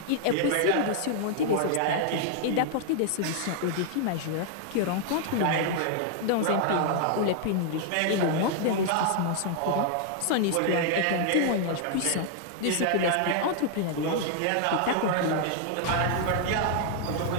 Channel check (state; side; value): different; both; correlation 0.00